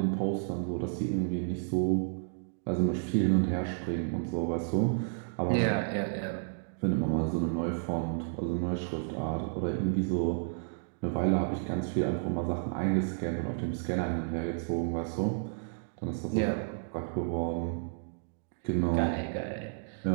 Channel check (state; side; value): silent; left; digital silence